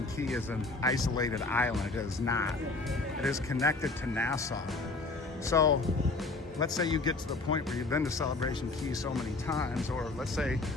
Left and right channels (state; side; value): quieter; right; 3.4 dB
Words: Key is an isolated island. It is not. It is connected to Nassau. So let's say you get to the point where you've been to Celebration Key so many times, or let's say